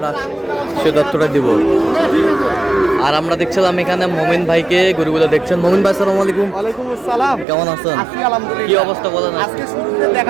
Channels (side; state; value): left; drops out; at 7.5 s